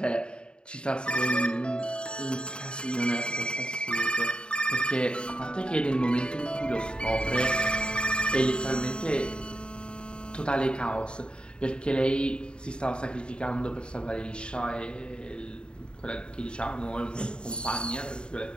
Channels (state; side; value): late; right; 0.051 ms